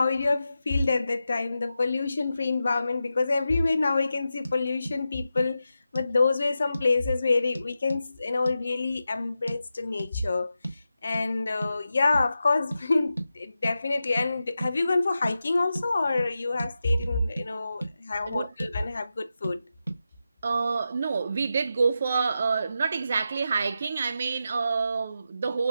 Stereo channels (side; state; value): both; inverted; correlation -0.90